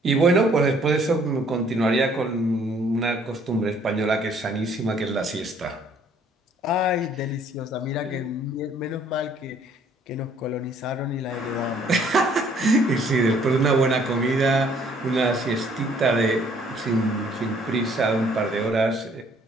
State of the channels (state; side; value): normal; both; correlation 0.61